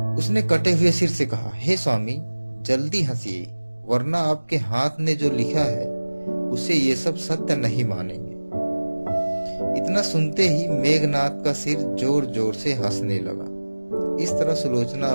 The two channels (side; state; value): both; inverted; correlation -1.00